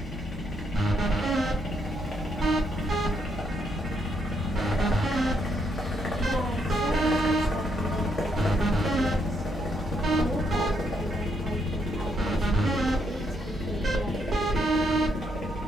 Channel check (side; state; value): both; normal; correlation 0.75